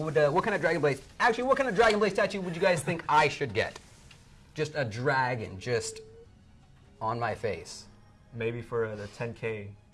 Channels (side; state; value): both; identical; correlation 1.00